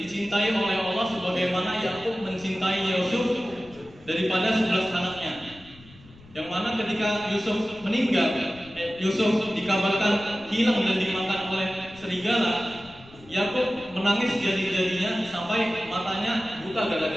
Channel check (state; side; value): noise; left; rumble, 23 dB below the sound